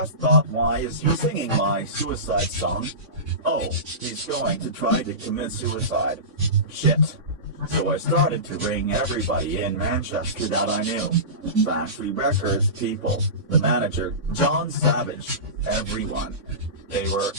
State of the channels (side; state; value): left; late; 3.6 ms